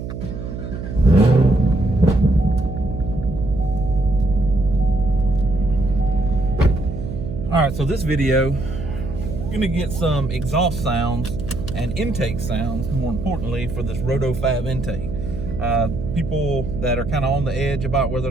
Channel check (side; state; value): right; noise; hum, 7 dB below the sound